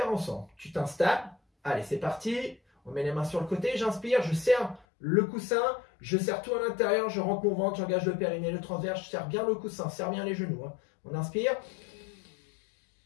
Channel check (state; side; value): drops out; right; at 4.9 s